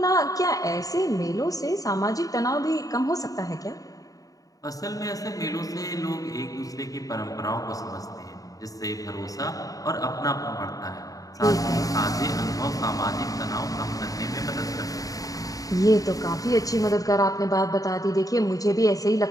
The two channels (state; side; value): late; right; 0.17 ms